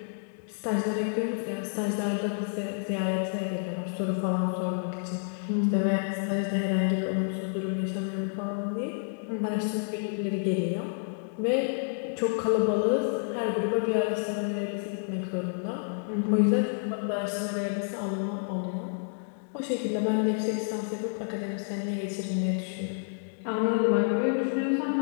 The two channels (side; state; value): right; silent; digital silence